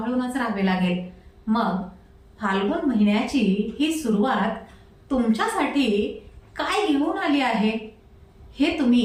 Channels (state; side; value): identical; both; correlation 1.00